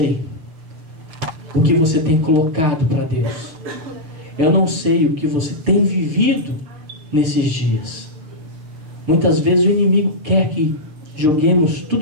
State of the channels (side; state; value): left; late; 6.5 ms